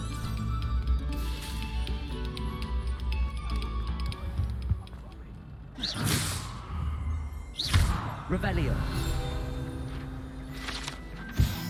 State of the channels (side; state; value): both; identical; correlation 1.00